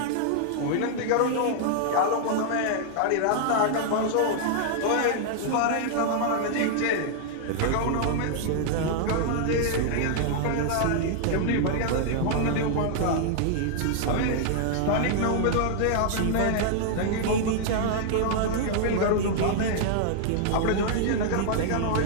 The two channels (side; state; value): both; different; correlation -0.01